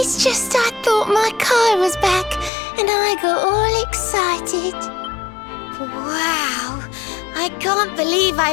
just I thought my Kai was back and I got all excited. Wow, I can't believe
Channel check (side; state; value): right; drops out; at 2.5 s